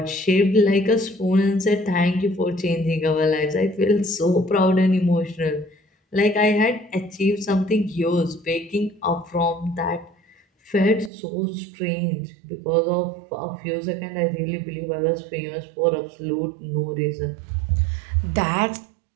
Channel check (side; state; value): left; drops out; at 11.1 s